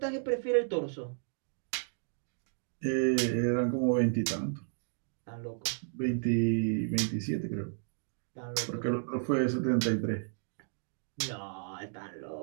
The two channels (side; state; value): left; silent; digital silence